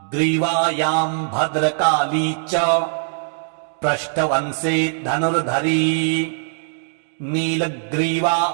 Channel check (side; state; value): left; silent; digital silence